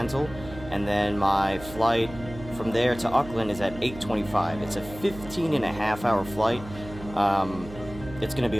and then my flight from there to Auckland is at 8:25. It's a 15 and a half hour flight. It's going to be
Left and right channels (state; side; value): noise; right; hum, 14 dB below the sound